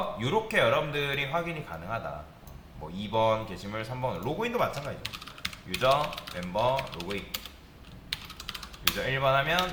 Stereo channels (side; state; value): both; identical; correlation 1.00